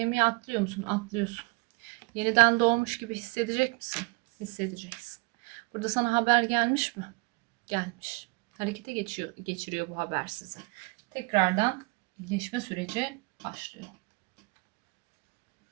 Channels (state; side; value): quieter; left; 28.3 dB